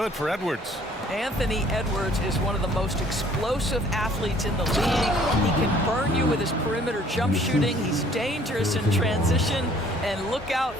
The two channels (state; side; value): normal; both; correlation 0.57